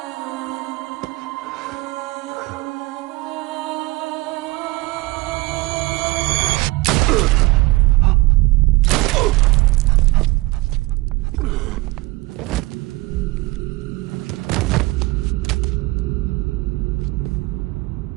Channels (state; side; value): quieter; left; 21.6 dB